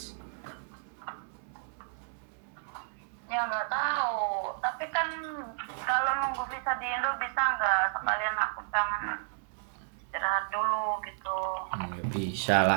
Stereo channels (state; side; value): silent; left; digital silence